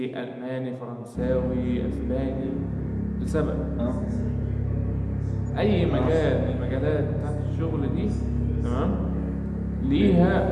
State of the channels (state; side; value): identical; both; correlation 1.00